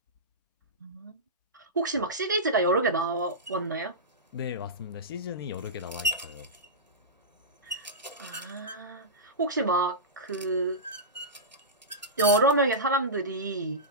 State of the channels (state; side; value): normal; both; correlation -0.15